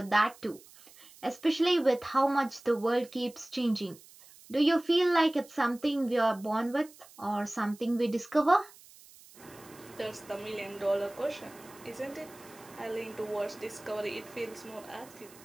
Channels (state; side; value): noise; right; hiss, 22 dB below the sound